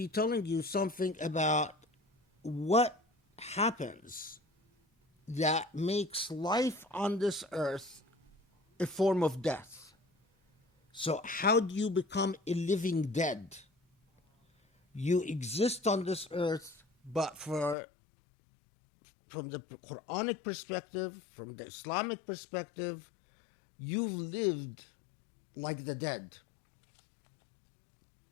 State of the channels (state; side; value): drops out; right; at 17.8 s